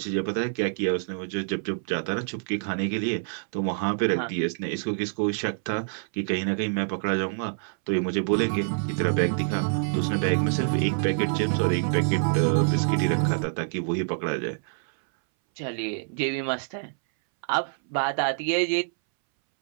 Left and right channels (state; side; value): silent; left; 61 dB below the other